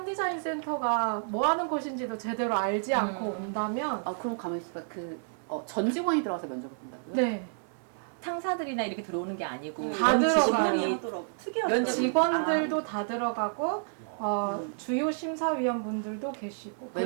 센터가 뭐 하는 곳인지도 제대로 알지 않고 온다면 그럼 가만히 있어봐. 전 직원이 들어가서 면접을 본다고요? 네. 상사들이나 이렇게 들어오는 게 아니고 다 들어가요. 하더라고. 특이하더라고요. 직원들도 다 들어가고 주요 심사위원분들도 계시고 외부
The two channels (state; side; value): silent; left; 58 dB below the other